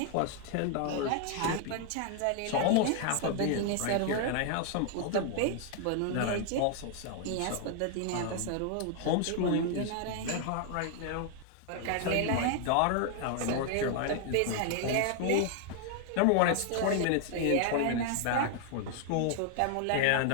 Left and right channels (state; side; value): different; both; correlation 0.00